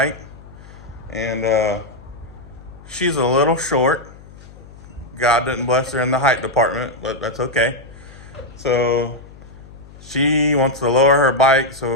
And she's a little short. God didn't bless her in the height department, but that's okay. So she wants to lower her bike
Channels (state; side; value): noise; left; hum, 20 dB below the sound